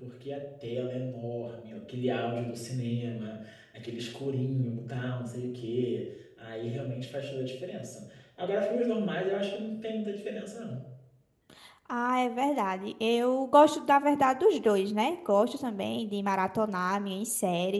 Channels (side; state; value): both; identical; correlation 1.00